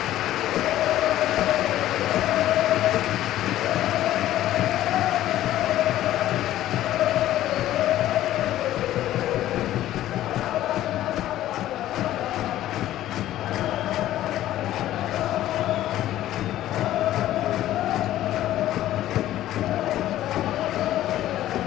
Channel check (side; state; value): right; quieter; 13.6 dB